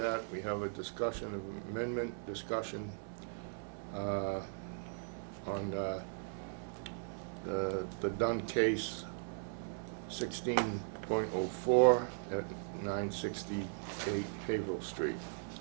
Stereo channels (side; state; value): left; silent; digital silence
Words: we have a discussion, an amendment discussion on the Dunn case 16.04 at 968 Haverhill Street.